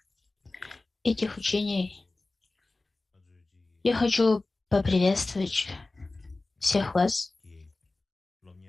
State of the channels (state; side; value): quieter; right; 3.2 dB